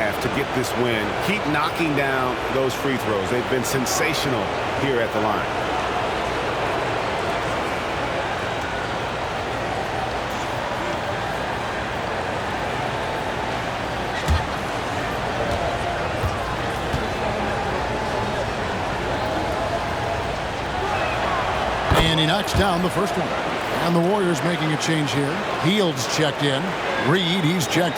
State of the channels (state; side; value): identical; both; correlation 1.00